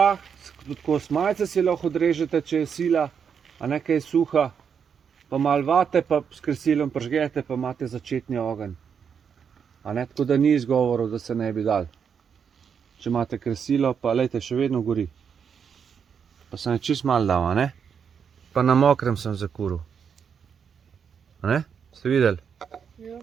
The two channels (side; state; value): left; quieter; 7.0 dB